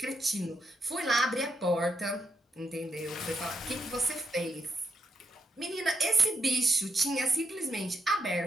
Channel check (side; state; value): both; normal; correlation 0.80